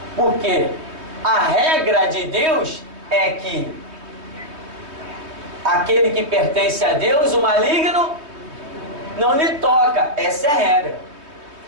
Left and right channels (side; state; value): left; late; 3.2 ms